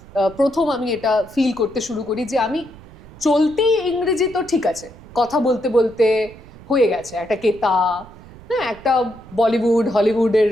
প্রথম আমি এটা ফিল করতে শুরু করি যে আমি চলতি ইংরেজি তো ঠিক আছে, কথা বলতে বলতে হয়ে গেছে একটা কেতা, হ্যাঁ, একটা বলিউড হলিউডের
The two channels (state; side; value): noise; right; rumble, 20 dB below the sound